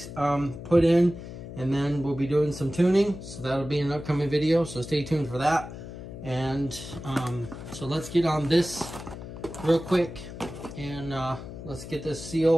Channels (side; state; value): left; noise; hum, 12 dB below the sound